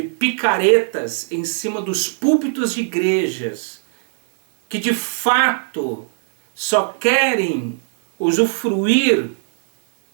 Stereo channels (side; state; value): left; silent; digital silence